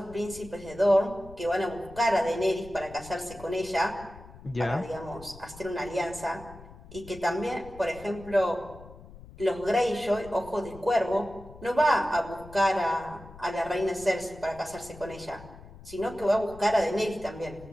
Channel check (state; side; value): noise; left; rumble, 18 dB below the sound